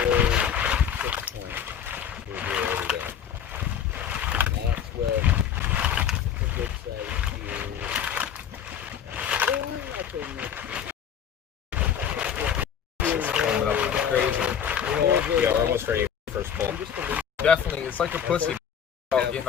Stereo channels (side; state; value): right; quieter; 8.4 dB